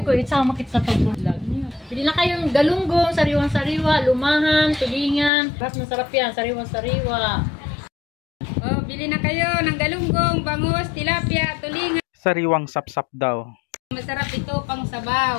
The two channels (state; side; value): drops out; right; at 5.3 s